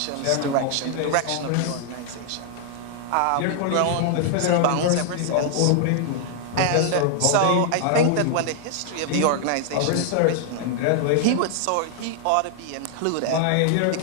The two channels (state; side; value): different; both; correlation 0.00